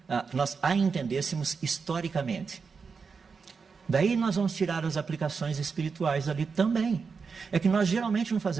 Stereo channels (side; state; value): left; quieter; 5.3 dB